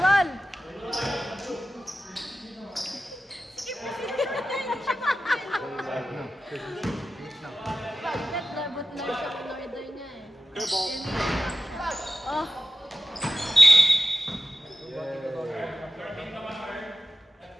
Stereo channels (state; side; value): normal; both; correlation 0.94